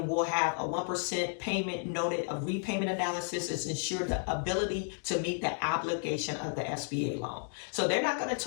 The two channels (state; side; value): silent; right; 56 dB below the other